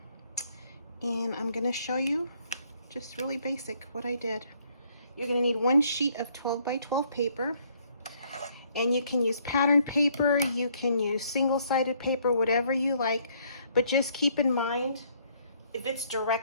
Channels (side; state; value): both; inverted; correlation -0.66